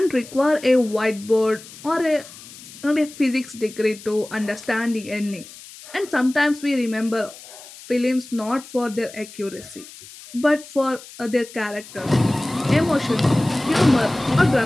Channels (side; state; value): left; noise; hiss, 18 dB below the sound